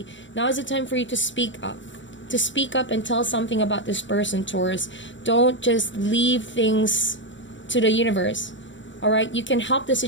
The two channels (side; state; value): right; late; 0.55 ms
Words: now is the time for you to speak up. To speak up and tell something about this person, Taurus. Don't just leave things to the universe. Alright? You can help the